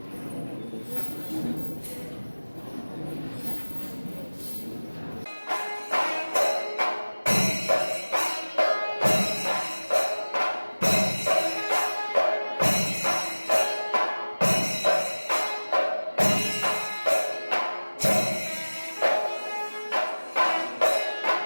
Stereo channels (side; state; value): both; inverted; correlation -1.00